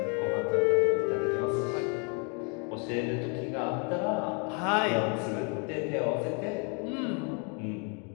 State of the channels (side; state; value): right; quieter; 36.0 dB